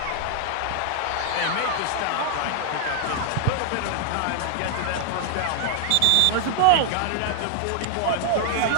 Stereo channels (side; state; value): both; different; correlation 0.00